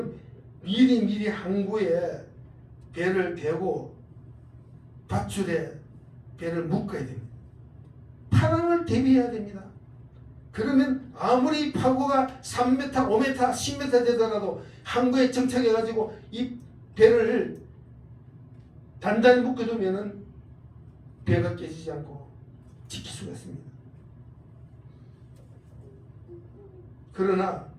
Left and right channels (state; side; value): identical; both; correlation 1.00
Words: 미리 항구에 배를 대고 밧줄에 배를 묶어야 됩니다. 파랑을 대비해야 됩니다. 그러면 아무리 파고가 3m, 5m, 10m 되더라도 항구에 정착해가지고 이 배를 단단히 묶어두면은 배가 깨지지 않고 지킬 수가 있습니다. 그러나